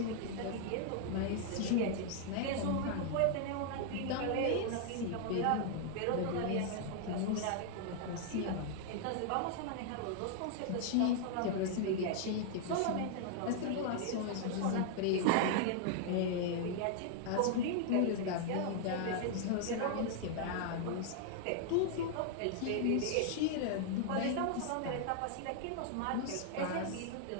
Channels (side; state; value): both; different; correlation 0.00